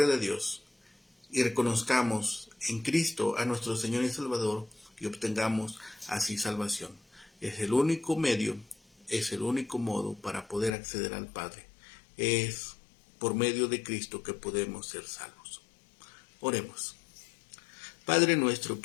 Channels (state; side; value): drops out; right; at 10.7 s